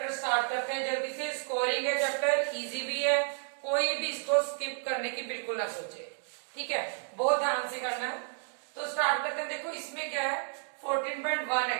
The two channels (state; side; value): silent; left; 57 dB below the other